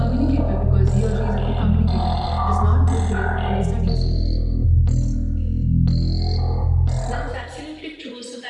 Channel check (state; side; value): identical; both; correlation 1.00